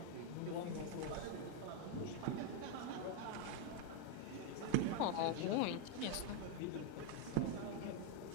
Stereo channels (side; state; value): both; different; correlation 0.01